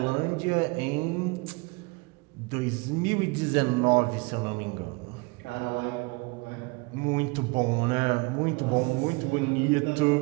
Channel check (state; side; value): quieter; left; 27.6 dB